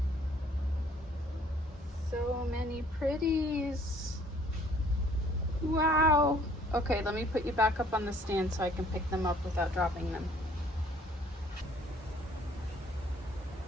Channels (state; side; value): normal; both; correlation 0.58